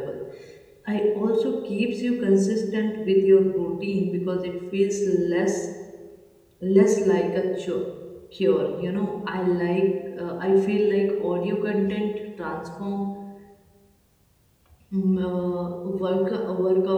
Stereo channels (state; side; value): identical; both; correlation 1.00